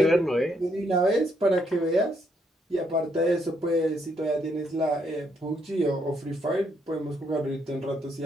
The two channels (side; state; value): both; normal; correlation 0.74